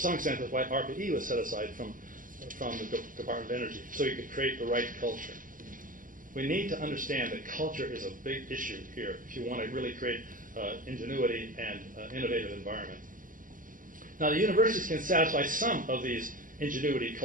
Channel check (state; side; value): late; left; 0.39 ms